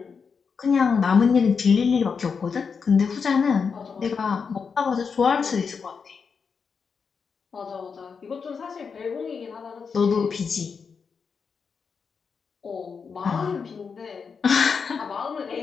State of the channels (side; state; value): right; quieter; 5.7 dB